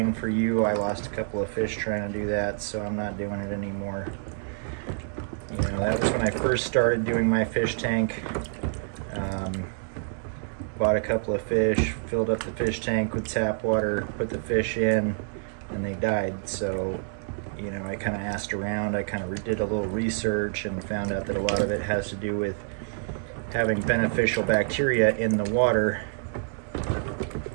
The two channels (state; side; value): silent; left; 60 dB below the other